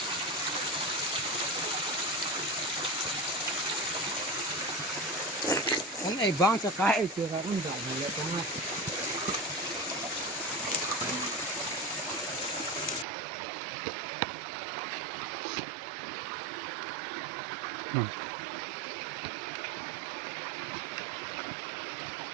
anh ấy băng cho cái chưa ra cũng dài này trong này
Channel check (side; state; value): left; drops out; at 13.1 s